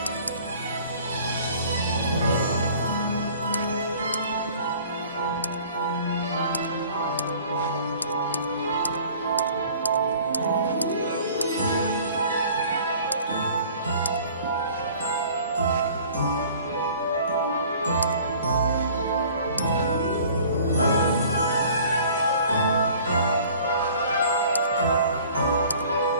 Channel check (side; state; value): both; inverted; correlation -0.50